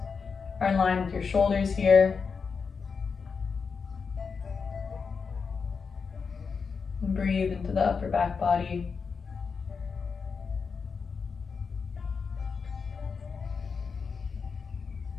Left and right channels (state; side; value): quieter; right; 5.5 dB